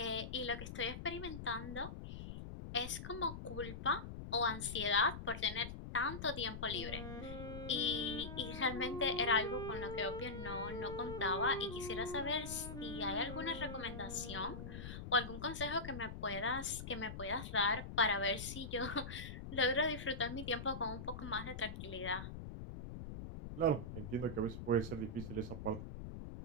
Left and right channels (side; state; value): left; noise; rumble, 8 dB below the sound